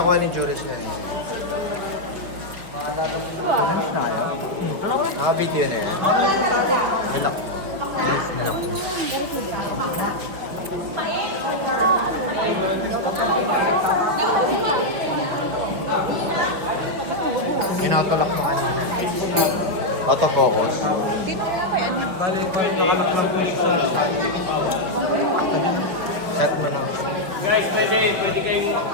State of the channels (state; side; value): late; left; 5.7 ms